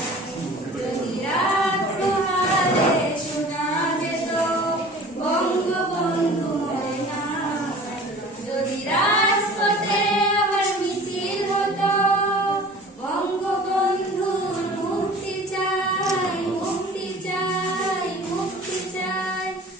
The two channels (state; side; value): normal; both; correlation 0.43